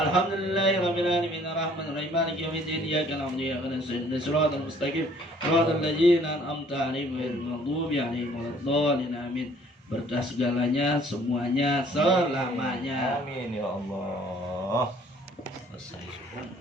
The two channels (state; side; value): normal; both; correlation 0.58